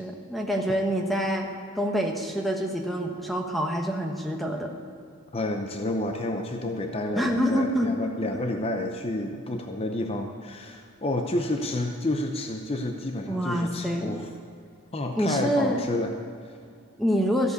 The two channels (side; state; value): both; normal; correlation 0.65